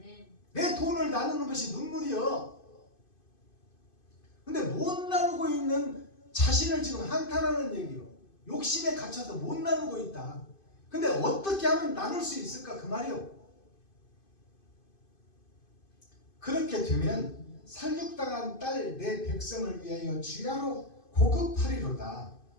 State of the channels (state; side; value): late; right; 2.5 ms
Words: 내 돈을 나누는 것이 눈물이요. 근데 못 나누고 있는 자신을 지금 한탄하는 얘기요. 욕심에 갇혀서 못 나누고 있다. 근데 어떻게 하면 나눌 수 있을까 그 말이요. 그렇게 되면 살육당한 딸 내 백성을 위하여 주야로 고급하리로다.